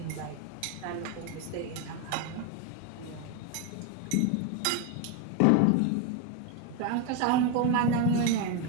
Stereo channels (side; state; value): both; different; correlation 0.02